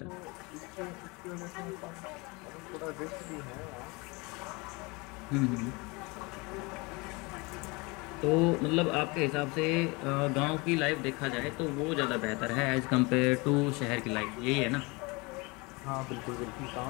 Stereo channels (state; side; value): quieter; right; 26.7 dB